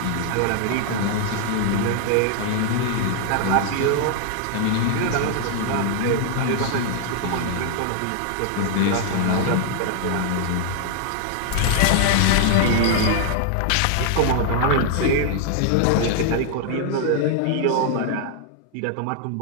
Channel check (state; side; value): different; both; correlation 0.00